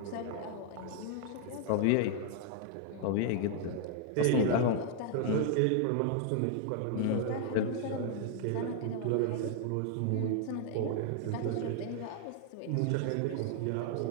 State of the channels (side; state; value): both; different; correlation 0.00